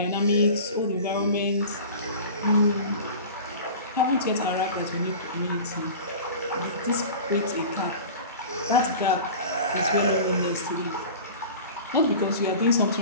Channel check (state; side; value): inverted; both; correlation -0.37